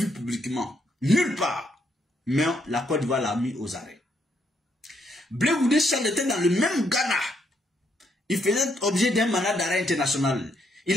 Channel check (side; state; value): both; normal; correlation 0.74